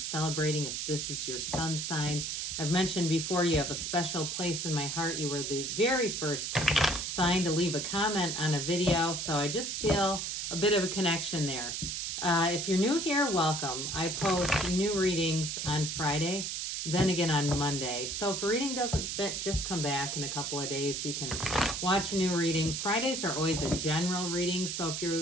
if this is your sun sign. I've mentioned before you have a special place in my heart. You were the very first sign to leave a comment on a video, so I just feel a bit of a connection there. If you're new here, welcome. I post new readings on Friday, then again on Monday. So if a reading doesn't fit, just come back in a couple of days. You can watch a new reading. Fridays are always a general reading, so if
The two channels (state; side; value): noise; right; hiss, 3 dB below the sound